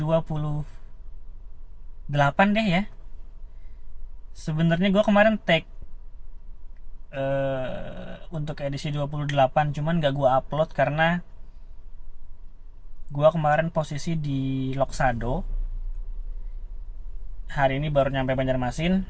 deh ya. Sebenarnya gue kemarin tag untuk edisi 28, cuman gak gue upload karena gue kemarin posisi di Loksado. Hari ini baru nyampe Banjarmasin.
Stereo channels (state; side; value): identical; both; correlation 1.00